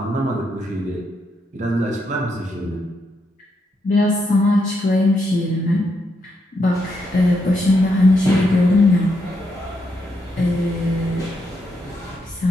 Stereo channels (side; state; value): both; normal; correlation 0.80